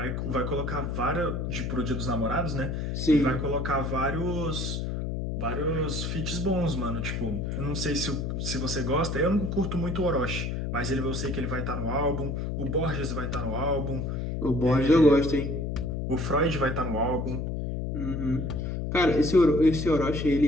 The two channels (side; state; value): left; noise; hum, 2 dB below the sound